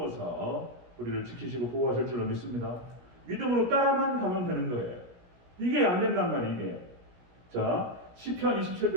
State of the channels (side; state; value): left; late; 17 ms